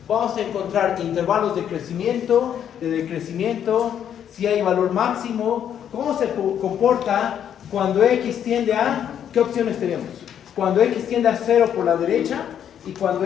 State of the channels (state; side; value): quieter; right; 9.3 dB